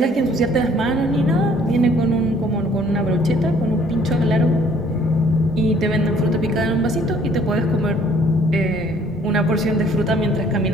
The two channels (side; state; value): both; normal; correlation 0.59